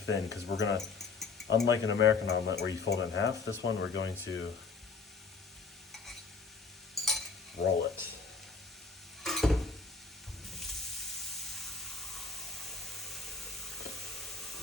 because we're gonna, unlike an American omelet where you fold it in half, this one we're going to roll it.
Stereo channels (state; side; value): quieter; right; 4.7 dB